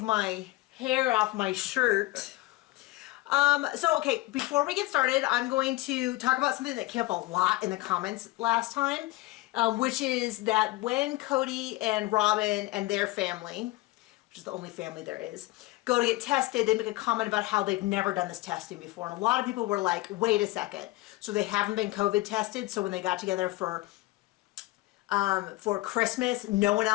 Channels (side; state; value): right; quieter; 19.7 dB